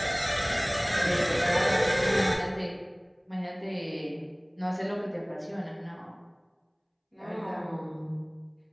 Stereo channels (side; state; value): both; identical; correlation 1.00